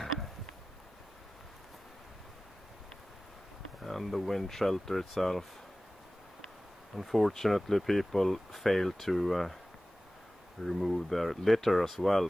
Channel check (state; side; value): normal; both; correlation 0.97